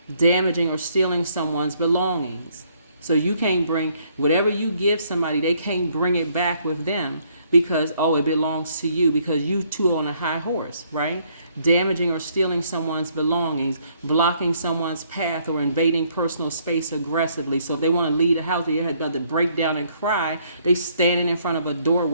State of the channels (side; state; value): both; inverted; correlation -0.67